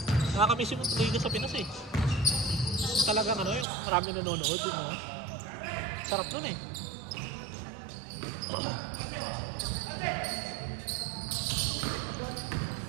Nakakamiss yung Liga sa Pinas eh. Talagang ano yun, marami nanonood yun. No? Sarap dun eh.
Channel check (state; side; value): drops out; left; at 3.7 s